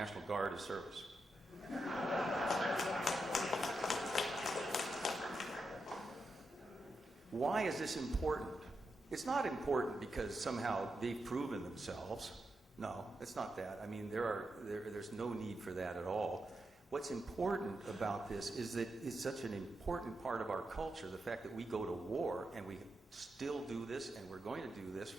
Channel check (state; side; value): normal; both; correlation 0.86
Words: Guard as service. Why is this important? It's not important because somehow they've proven themselves. No, it's not that. I mean, there's no need for that at all. What's important about this is that it's such an important part of our culture, the fact that we go to war and we still do this, and we're going to do this